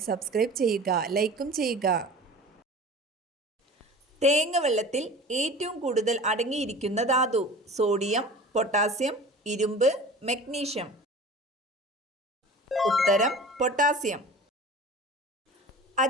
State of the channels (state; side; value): normal; both; correlation 0.39